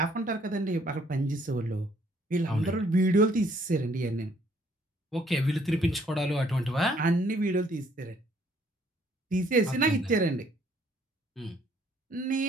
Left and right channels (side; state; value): both; normal; correlation 0.64